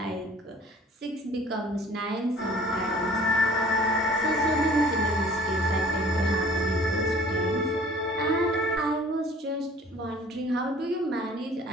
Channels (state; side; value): normal; both; correlation 0.51